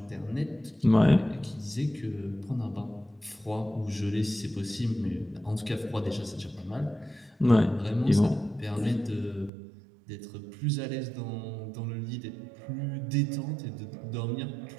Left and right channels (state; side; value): drops out; left; at 9.5 s